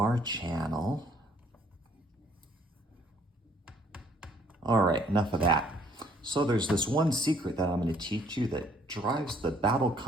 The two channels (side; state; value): both; normal; correlation 0.62